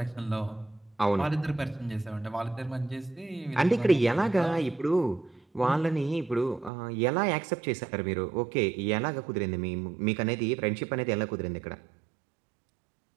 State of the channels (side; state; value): left; drops out; at 6.7 s